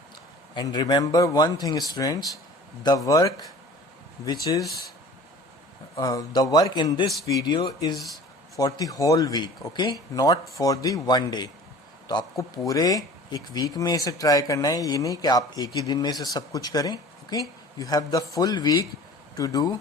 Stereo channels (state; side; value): normal; both; correlation 0.44